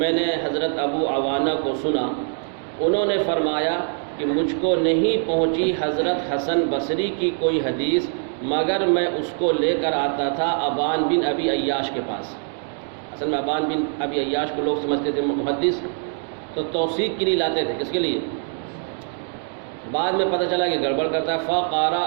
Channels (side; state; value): left; silent; 59 dB below the other